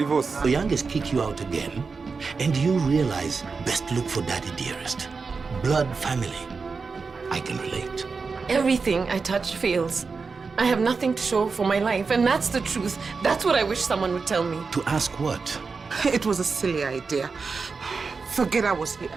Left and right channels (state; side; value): quieter; left; 4.7 dB